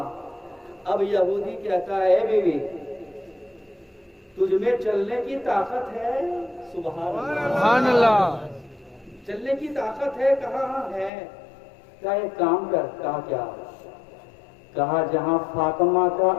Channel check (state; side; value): drops out; right; at 11.1 s